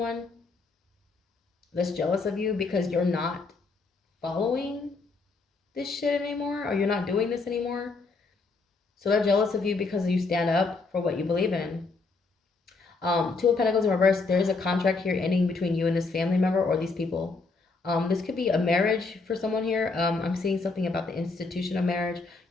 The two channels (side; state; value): right; quieter; 4.0 dB